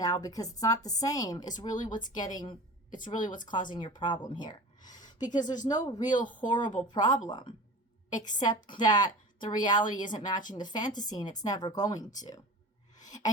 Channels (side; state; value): both; normal; correlation 0.36